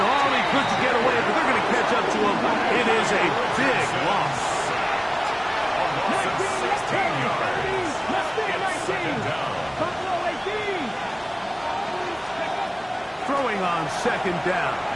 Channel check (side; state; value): both; identical; correlation 1.00